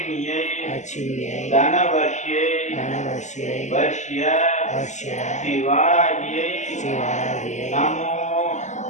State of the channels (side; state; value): right; late; 0.34 ms